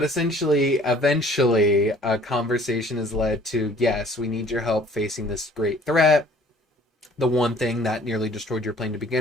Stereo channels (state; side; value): normal; both; correlation 0.53